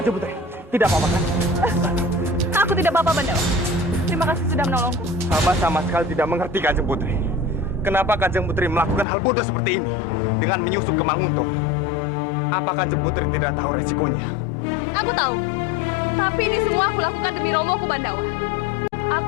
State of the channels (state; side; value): drops out; right; at 9.1 s